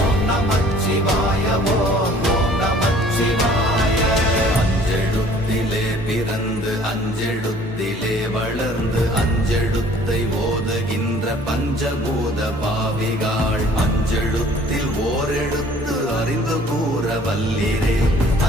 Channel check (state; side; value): normal; both; correlation 0.54